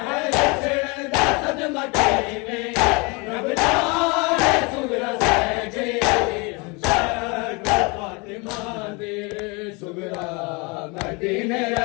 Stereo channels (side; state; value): right; quieter; 29.1 dB